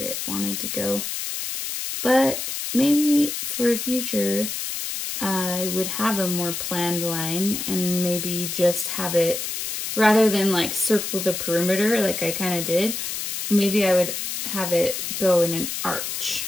wanted to go. But maybe for a future, I would have a more planned line and maybe just have it, rather than like circle the perimeter like I kind of did, maybe I would have it go in an arch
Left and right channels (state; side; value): noise; left; hiss, 4 dB below the sound